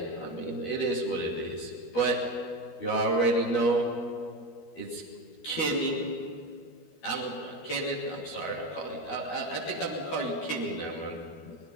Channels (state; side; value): late; right; 12 ms